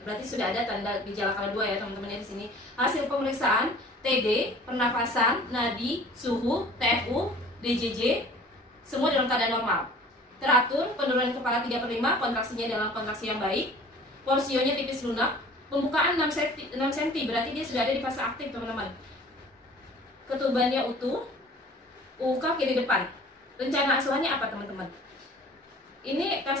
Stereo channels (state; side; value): normal; both; correlation 0.47